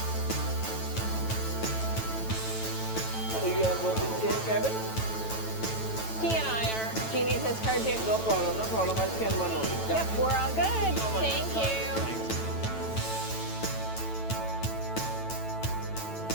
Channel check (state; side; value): late; right; 9.1 ms